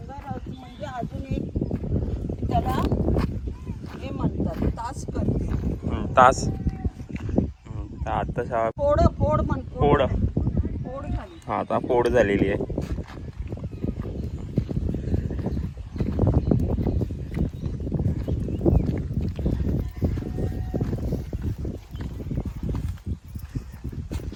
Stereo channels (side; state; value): both; identical; correlation 1.00